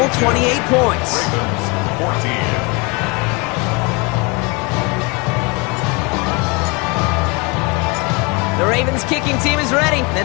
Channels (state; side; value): quieter; right; 28.1 dB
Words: 28 points. 14. The Ravens kicking team is ready,